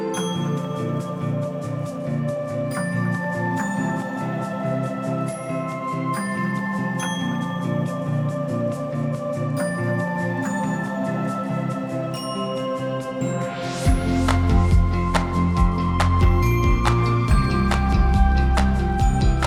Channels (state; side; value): identical; both; correlation 1.00